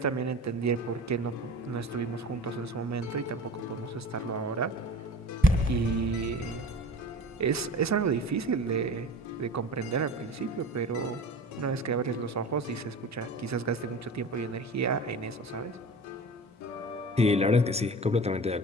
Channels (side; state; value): both; normal; correlation 0.38